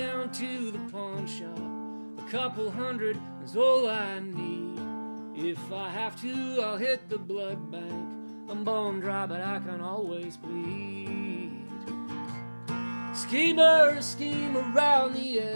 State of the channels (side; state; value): both; inverted; correlation -1.00